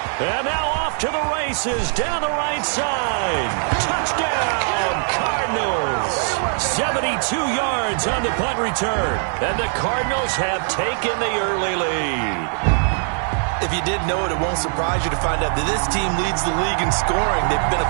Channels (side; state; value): left; silent; 59 dB below the other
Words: And now off to the races down the right side. Touchdown, Cardinals. 72 yards on the punt return. And the Cardinals have taken the early lead. If you didn't know it, it won't surprise you to find out that this team leads the league in scoring. They've been